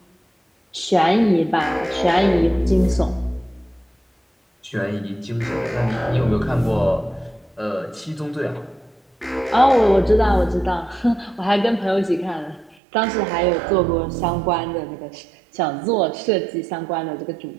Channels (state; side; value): drops out; left; at 12.8 s